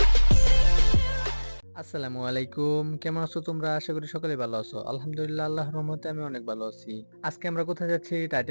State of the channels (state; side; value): inverted; both; correlation -1.00